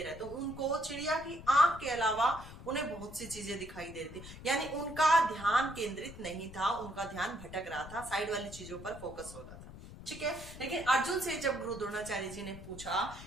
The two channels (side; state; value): left; noise; rumble, 14 dB below the sound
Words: रहा है, तो उनको चिड़िया की आंख के अलावा उन्हें बहुत सी चीजें दिखाई दे रही थी। यानी उनका ध्यान केंद्रित नहीं था, उनका ध्यान भटक रहा था, साइड वाली चीजों पर फोकस हो रहा था। ठीक है, लेकिन अर्जुन से जब गुरु द्रोणाचार्य जी ने पूछा